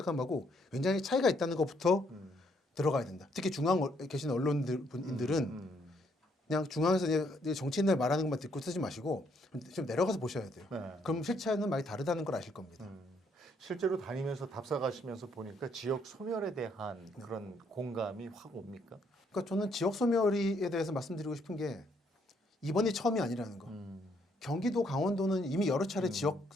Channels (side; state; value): both; normal; correlation 0.70